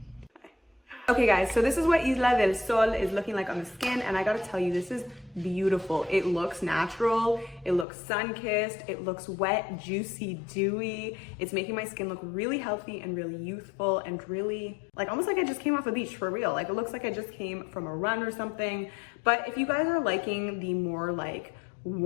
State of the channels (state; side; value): drops out; right; at 7.9 s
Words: Okay guys, so this is what Isla del Sol is looking like on the skin, and I gotta tell you, this is beautiful. It looks natural, it looks sun-kissed, it looks wet, juicy, dewy. It's making my skin look really healthy and really youthful and really, like almost like I just came off a beach for real. Like it looks like I just came from a run or something. But if you guys are liking the more like